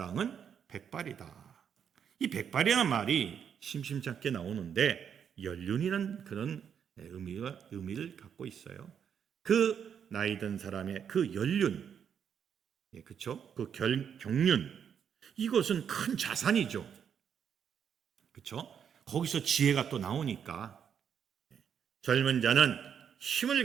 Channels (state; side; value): quieter; left; 7.9 dB